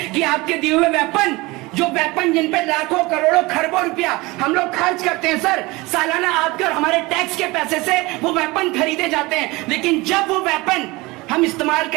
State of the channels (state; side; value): quieter; left; 22.7 dB